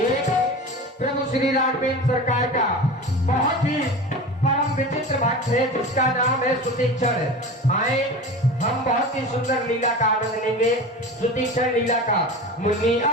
प्रभु श्री राघवेंद्र सरकार का बहुत ही परम विचित्र भक्त है जिसका नाम है सुतीक्षण। आए हम बहुत ही सुंदर लीला का आनंद लेंगे। सुतीक्षण लीला का मुनि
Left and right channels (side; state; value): both; normal; correlation 0.32